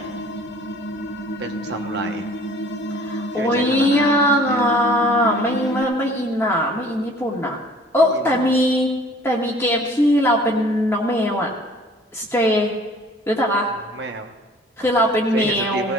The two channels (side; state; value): both; normal; correlation 0.52